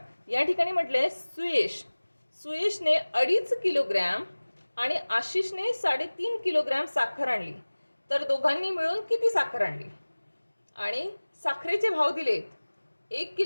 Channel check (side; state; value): both; inverted; correlation -1.00